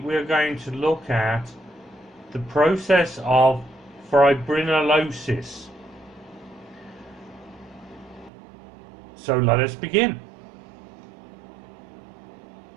going to look at the process of fibrinolysis. So let us begin.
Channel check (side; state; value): left; drops out; at 8.3 s